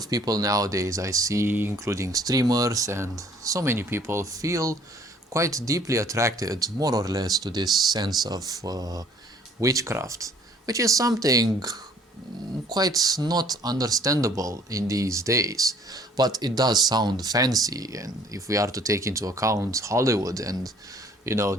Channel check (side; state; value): both; normal; correlation 0.56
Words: people nowadays I see, including streamers and so many people, feel quite deeply attracted, more or less, to this sense of witchcraft, which is something quite not understandable in these days. But it does sound fancy, and if we are to take into account Hollywood and